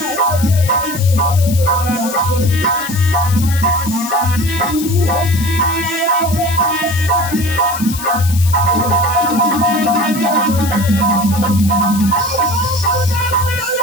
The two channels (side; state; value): left; noise; hiss, 10 dB below the sound